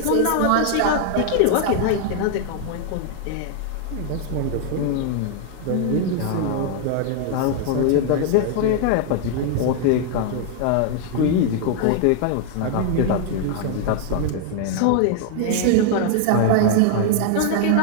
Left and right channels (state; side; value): different; both; correlation 0.00